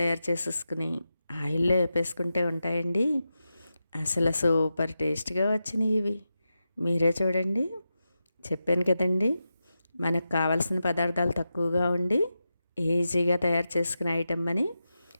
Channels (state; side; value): inverted; both; correlation -0.90